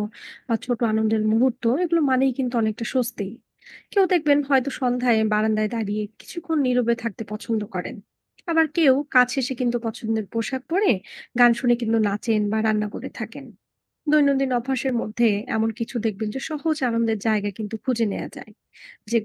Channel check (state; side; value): identical; both; correlation 1.00